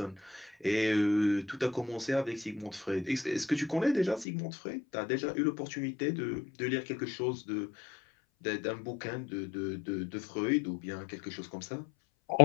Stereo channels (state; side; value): drops out; right; at 4.2 s